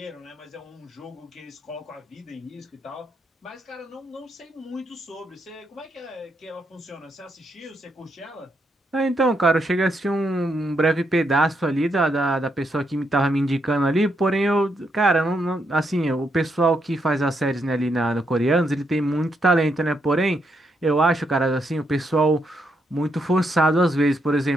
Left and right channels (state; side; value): normal; both; correlation 0.78